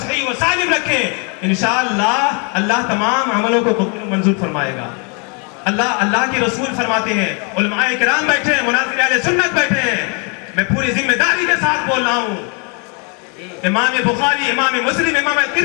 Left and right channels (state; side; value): quieter; right; 36.1 dB